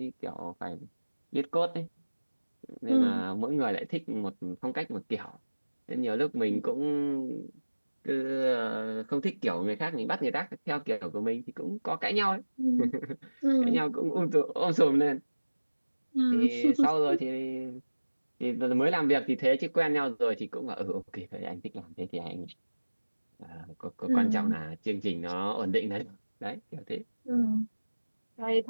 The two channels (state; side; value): inverted; both; correlation -1.00